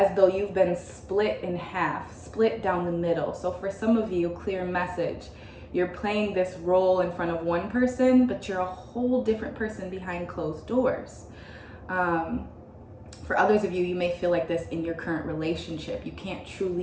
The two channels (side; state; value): both; identical; correlation 1.00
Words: though you've been split in half, split down the middle. So for some of you, clear message. You're playing this role in front of one person, but you're a whole different person behind closed doors. For others of you, you may feel like this in your current relationship. You can't